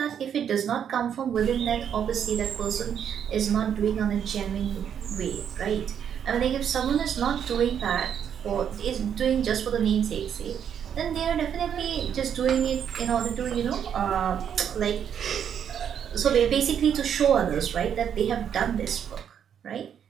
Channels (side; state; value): left; quieter; 8.5 dB